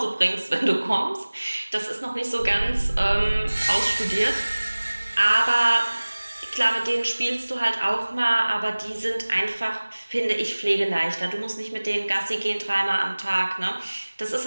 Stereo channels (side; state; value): both; inverted; correlation -1.00